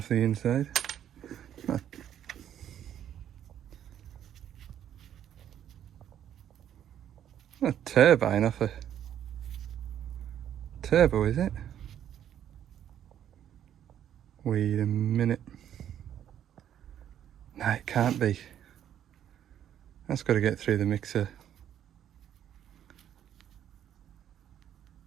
the inside. A turbine off a turbo, is it? Wait a minute. No, it can't be. That's got to get through the mixer.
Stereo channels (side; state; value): left; quieter; 10.3 dB